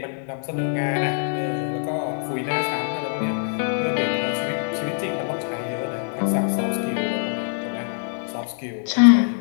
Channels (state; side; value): silent; right; digital silence